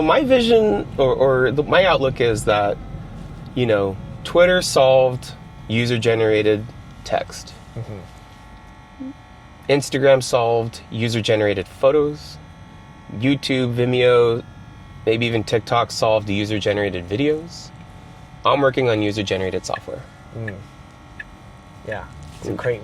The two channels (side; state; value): both; identical; correlation 1.00